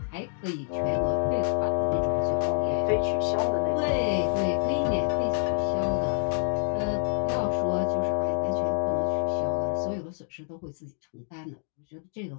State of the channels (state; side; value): silent; right; digital silence